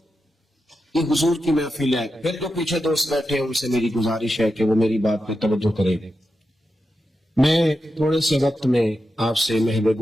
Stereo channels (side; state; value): both; normal; correlation 0.89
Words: یہ حضور کی محفل ہے. پھر جو پیچھے دوست بیٹھے ہیں ان سے میری گزارش ہے کہ وہ میری بات پہ توجہ کریں. میں تھوڑے سے وقت میں آپ سے محو